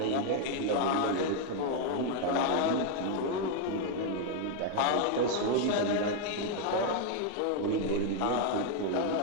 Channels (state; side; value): different; both; correlation 0.00